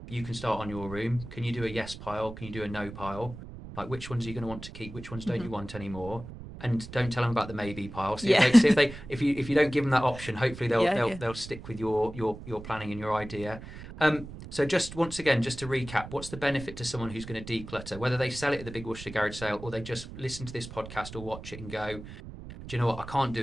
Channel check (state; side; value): noise; right; rumble, 13 dB below the sound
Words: You can start on your room. Can you do a yes pile? Can you do a no pile? Like, which ones are you going to want to keep? Which ones don't you want anymore? And don't tell them about the maybe pile. Yeah. If you don't give them that option, hopefully Yeah, yeah. they'll stick with your planning and your idea. So just once again, just to recap, what's the benefit to someone who's going to declutter, whether they sell it at the Big Worcestershire Garage Sale or they just listen to this podcast or watch it and go, do you know what? I can't